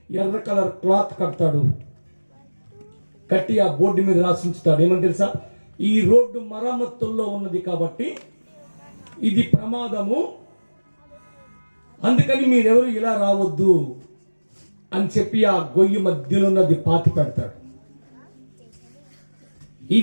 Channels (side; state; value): both; inverted; correlation -1.00